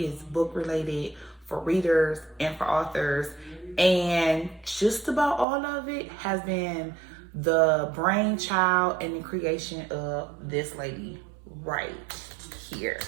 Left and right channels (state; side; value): drops out; left; at 5.5 s